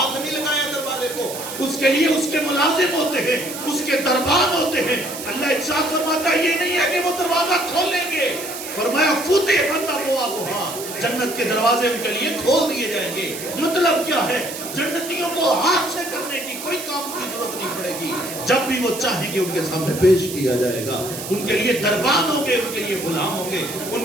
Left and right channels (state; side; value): noise; right; hiss, 9 dB below the sound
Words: نہیں لگایا دروازے کو. اس کے لیے اس کے ملازم ہوتے ہیں، اس کے دربان ہوتے ہیں. اللہ ارشاد فرماتا ہے یہ نہیں ہے کہ وہ دروازہ کھولیں گے. فرمایا فتحت ابوابها، جنت کے دروازے ان کے لیے کھول دیے جائیں گے. مطلب کیا ہے؟ جنتیوں کو ہاتھ سے کرنے کی کوئی کام کی ضرورت نہیں پڑے گی. جب بھی وہ چاہیں گے ان کے سامنے پیش کیا جائے گا. ان کے لیے دربان ہوں گے, ان کے لیے غلام ہوں گے, ان